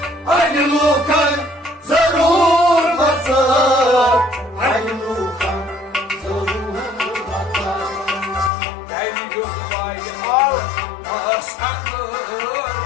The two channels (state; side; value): drops out; right; at 8.5 s